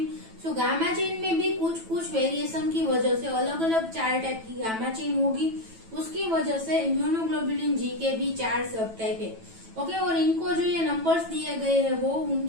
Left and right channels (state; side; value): late; left; 9.1 ms